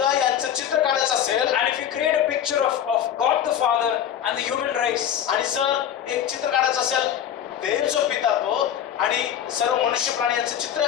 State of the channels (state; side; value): quieter; right; 9.8 dB